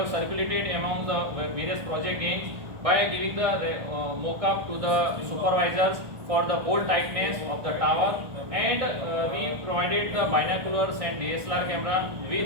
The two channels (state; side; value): late; left; 1.4 ms